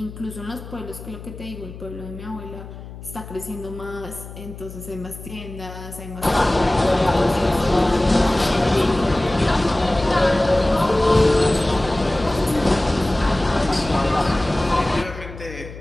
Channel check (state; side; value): noise; left; hum, 14 dB below the sound